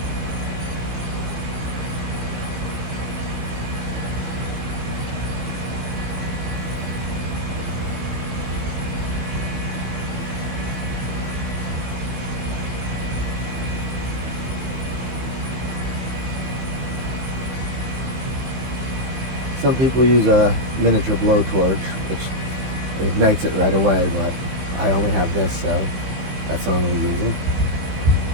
Some people use a miniature blowtorch, which ignites it right away, but I only have this, so that's what I'm going to be using.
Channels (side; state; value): left; late; 16 ms